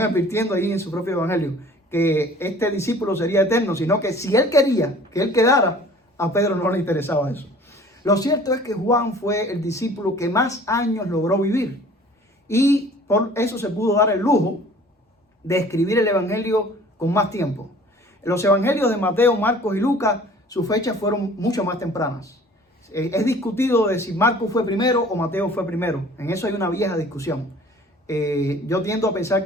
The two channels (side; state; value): both; normal; correlation 0.49